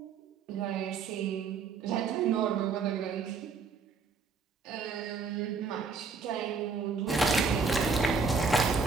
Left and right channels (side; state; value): left; quieter; 5.0 dB